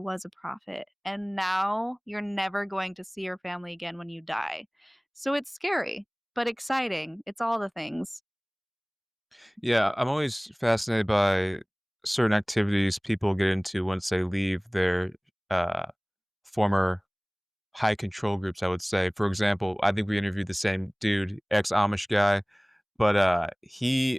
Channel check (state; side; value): identical; both; correlation 1.00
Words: a prophet?" And now you're never going to see your family again when you die. So it's scary, but exciting. It's all the things. Yeah, I'm always fascinated by certain activities people get into once they leave their, uh, former high control groups, I would say. For example, I think we interviewed the same dude, ex-Amish guy, but,